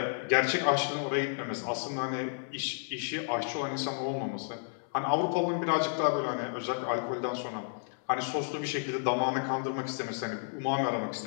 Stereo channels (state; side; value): silent; right; 57 dB below the other